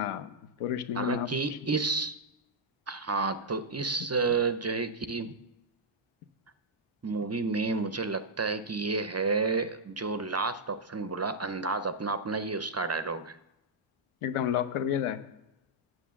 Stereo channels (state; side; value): normal; both; correlation -0.06